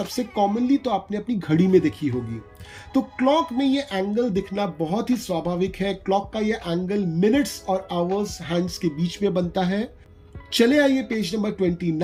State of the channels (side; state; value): both; identical; correlation 1.00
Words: कॉमनली तो आपने अपनी घड़ी में देखी होगी। तो क्लॉक में ये एंगल दिखना बहुत ही स्वाभाविक है। क्लॉक का ये एंगल मिनट्स और आवर्स हैंड्स के बीच में बनता है। चले आइए पेज नंबर